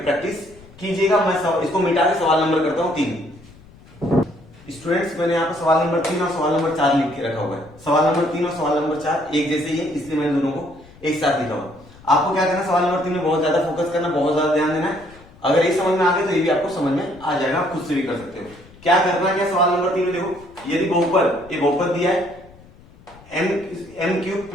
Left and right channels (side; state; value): left; noise; rumble, 24 dB below the sound